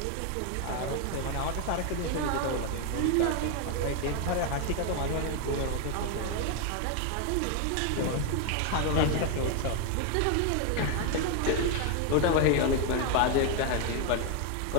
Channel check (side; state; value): both; different; correlation 0.01